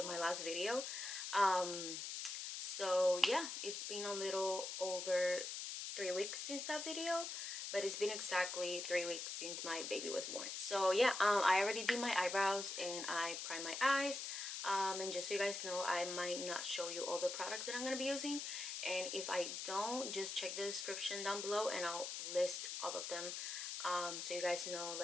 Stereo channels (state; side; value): noise; left; hiss, 5 dB below the sound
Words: my last video. So yeah, it's been a little over 3 weeks since that video, but it's been exactly 3 weeks since my baby was born. So yeah, I already did my eyebrows and I primed my eyes. And just so you guys know, I might not show you all the products that I'm gonna be using, and if I don't, just check the description down below and I'll list all of them, so you guys know,